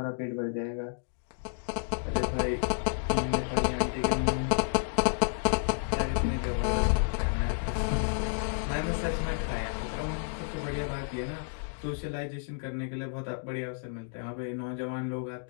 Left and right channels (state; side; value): silent; right; digital silence